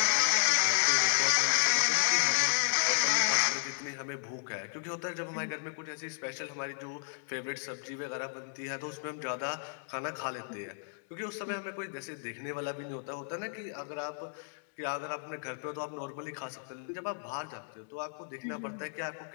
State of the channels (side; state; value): right; silent; digital silence